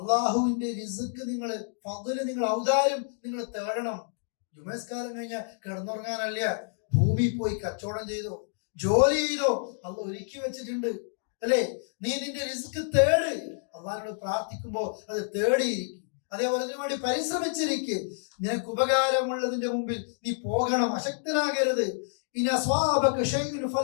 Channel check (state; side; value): silent; right; digital silence